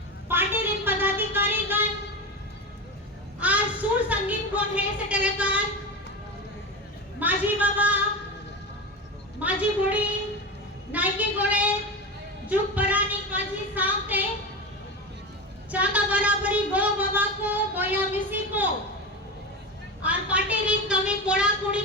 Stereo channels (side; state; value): both; normal; correlation 0.22